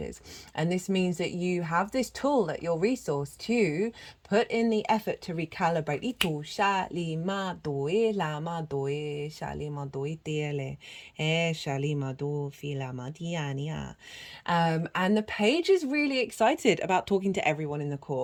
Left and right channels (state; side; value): identical; both; correlation 1.00